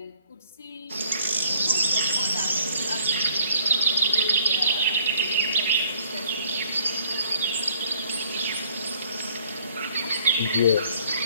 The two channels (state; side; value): inverted; both; correlation -0.60